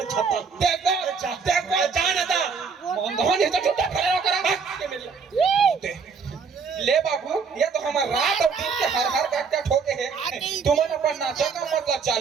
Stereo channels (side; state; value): left; quieter; 5.5 dB